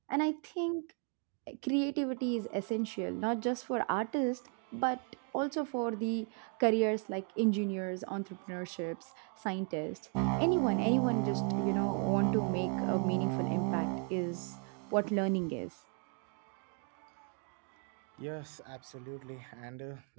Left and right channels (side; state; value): left; quieter; 34.0 dB